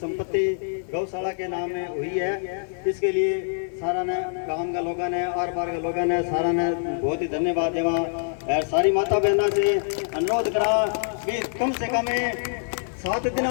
गौशाला के नाम में हुई है। इसके लिए सारा ने गांव के लोगों ने आर पार के लोगों ने सारा ने बहुत ही धन्यवाद देवा और सारी माता बहनों से अनुरोध करा कि कम से कम 7 दिनों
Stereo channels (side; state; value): right; silent; 62 dB below the other